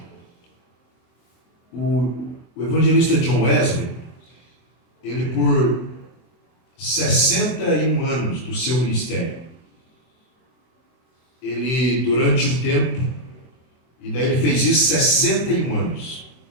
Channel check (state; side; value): late; right; 23 ms